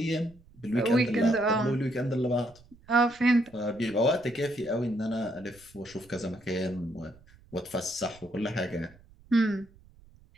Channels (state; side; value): noise; right; rumble, 26 dB below the sound